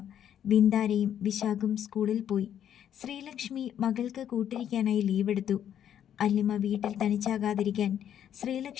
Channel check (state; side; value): quieter; right; 9.9 dB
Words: ബിന്ദാരയും വിശാഖും സ്കൂളിൽ പോയി. ശ്രീലക്ഷ്മി മകൾക്ക് കൂട്ടിരിക്കാനായി ലീവെടുത്തു. അല്ലിമ വീട്ടിൽ തനിച്ചാകാതിരിക്കാൻ